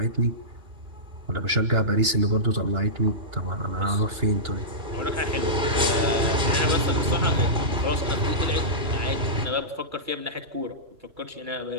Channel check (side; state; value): left; late; 2.9 ms